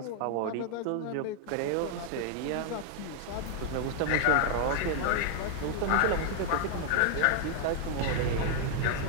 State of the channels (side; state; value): both; different; correlation 0.00